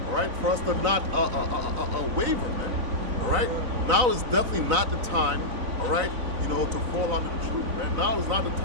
all right, for us to not waver, man. All right? Now is definitely not the time, all right, to fall out of the truth, man. Now is not the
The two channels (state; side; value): late; left; 4.0 ms